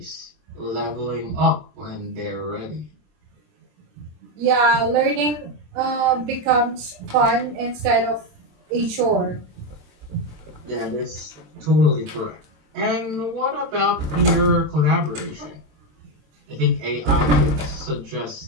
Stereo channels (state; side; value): late; left; 27 ms